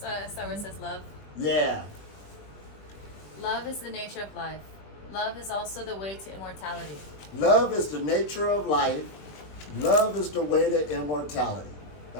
So where it says love. Yeah. Love is the nature of life. Love is also the way to immortality. Love is the nature of life. Love is the way to immortality.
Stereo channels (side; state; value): right; late; 20 ms